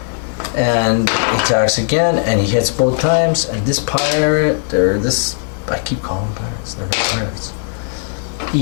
and he attacks again, and he hits both times. And this pirate, or this, I keep calling them pirates. They're not pirates.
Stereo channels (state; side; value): silent; right; digital silence